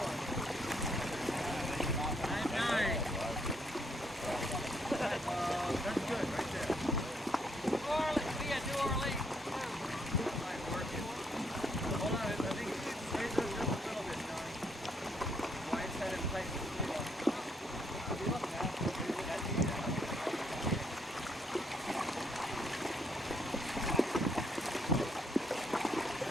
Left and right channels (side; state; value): both; normal; correlation 0.72